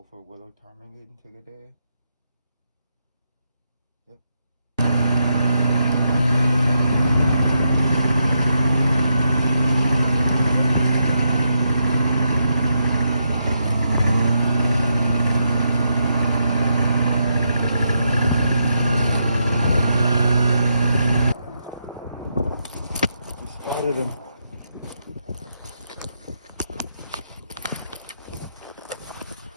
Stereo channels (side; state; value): both; inverted; correlation -0.81